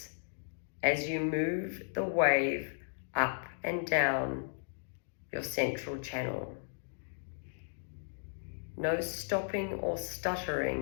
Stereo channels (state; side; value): silent; right; digital silence